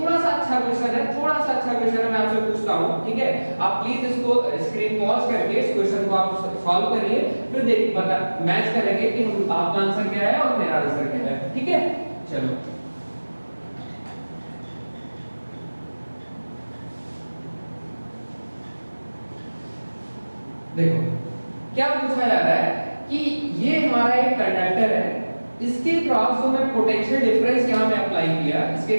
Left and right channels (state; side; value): inverted; both; correlation -1.00